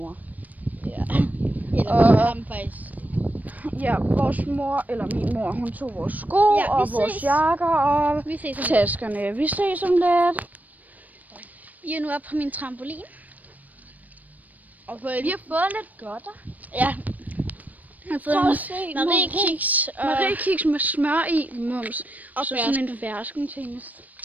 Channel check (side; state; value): left; late; 0.078 ms